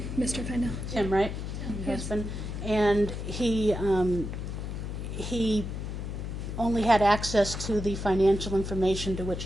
Mr. Feindel. Tim, right? Your husband. And he only had access to the financial information to which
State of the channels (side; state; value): left; noise; hum, 5 dB below the sound